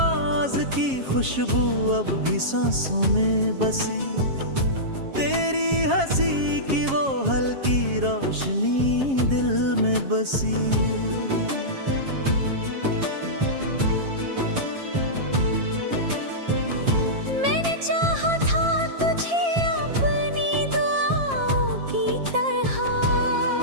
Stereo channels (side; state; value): left; late; 7.4 ms